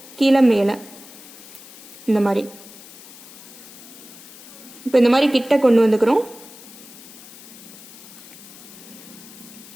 கீழே மேலே இந்த மாதிரி. இப்போ இந்த மாதிரி கிட்ட கொண்டு வந்துக்கிறோம்.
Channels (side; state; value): left; noise; hiss, 18 dB below the sound